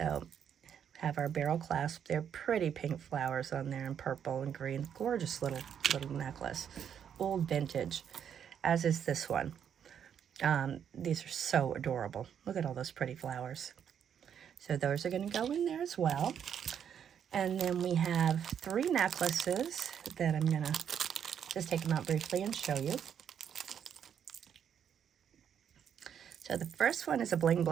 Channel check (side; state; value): left; quieter; 8.4 dB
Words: have our barrel clasp. They're pretty pink flowers on there in purple and green. Gorgeous little necklace. Old vintage, as is this one. These are so adorable. Look at all those pretty flowers. So those are going to go in there as well. And then we have 3 necklaces that I'm going to just take them out briefly and show you. So the first one is a bling,